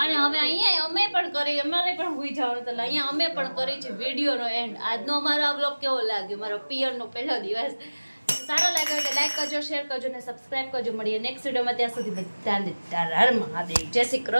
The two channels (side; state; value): both; inverted; correlation -1.00